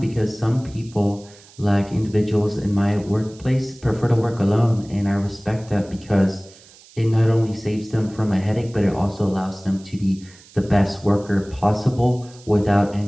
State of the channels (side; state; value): right; noise; hiss, 24 dB below the sound